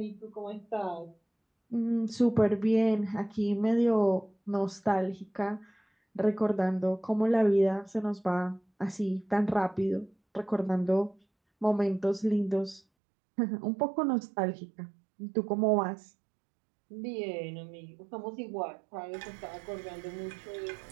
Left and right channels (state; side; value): drops out; left; at 12.8 s